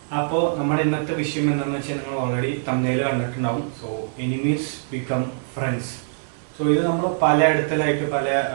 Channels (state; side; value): silent; left; digital silence